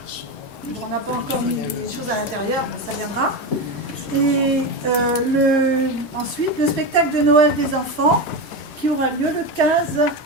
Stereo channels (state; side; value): late; right; 4.0 ms